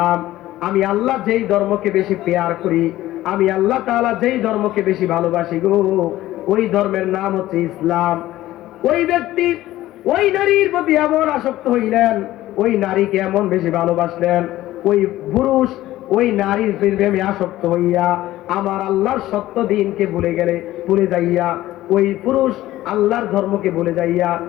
আমি আল্লাহ যেই ধর্মকে বেশি পেয়ার করি, আমি আল্লাহ তাআলা যেই ধর্মকে বেশি ভালোবাসি গো, ওই ধর্মের নাম হচ্ছে ইসলাম। ওই ব্যক্তি ওই নারীর প্রতি এমন আসক্ত হইলেন, ওই নারীকে এমন বেশি ভালোবাসলেন, ওই পুরুষ ওই নারীর প্রেমে আসক্ত হইয়া আমার আল্লাহর সত্য দিনকে ভুলে যাইয়া ওই পুরুষ আল্লাহর ধর্মকে ভুলে যাইয়া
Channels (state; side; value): quieter; right; 15.4 dB